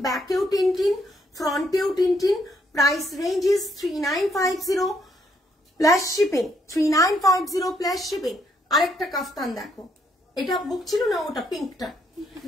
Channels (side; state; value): both; normal; correlation 0.72